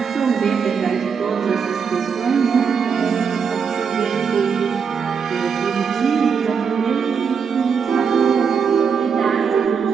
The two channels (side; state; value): left; quieter; 6.3 dB